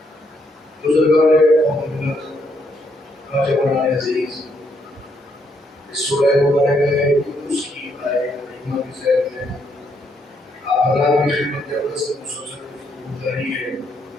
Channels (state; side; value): normal; both; correlation 0.74